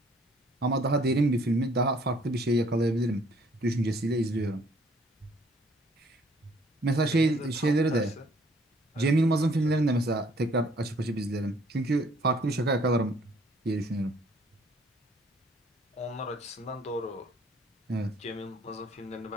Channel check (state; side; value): normal; both; correlation 0.61